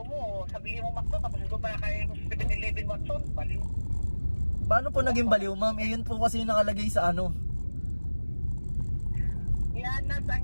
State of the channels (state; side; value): inverted; both; correlation -1.00